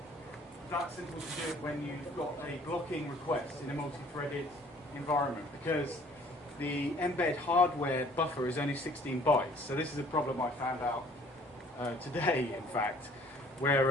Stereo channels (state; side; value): normal; both; correlation 0.55